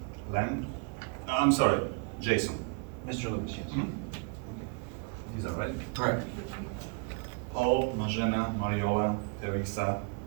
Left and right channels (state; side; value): quieter; left; 31.9 dB